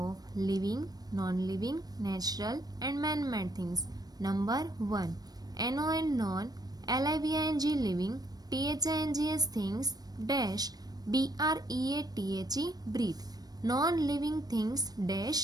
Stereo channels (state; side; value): late; left; 0.19 ms